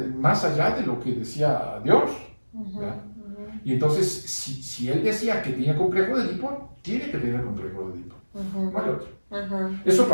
más allá de lo que decía Dios. Y entonces, si él decía que tenía complejo de Edipo, tiene que tener complejo de Edipo. No hay otro. Eso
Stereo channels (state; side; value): inverted; both; correlation -1.00